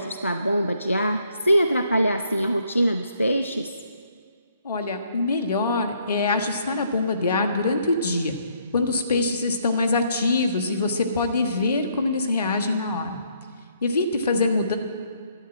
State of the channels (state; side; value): inverted; both; correlation -0.69